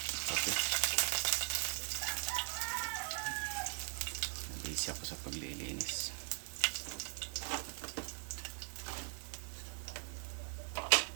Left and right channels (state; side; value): silent; left; 51 dB below the other